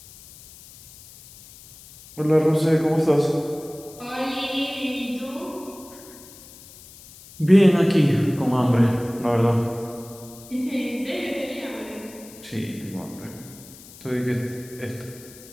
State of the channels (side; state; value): left; noise; hiss, 20 dB below the sound